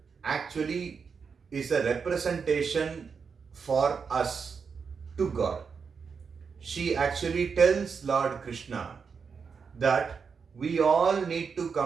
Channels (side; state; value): left; quieter; 5.8 dB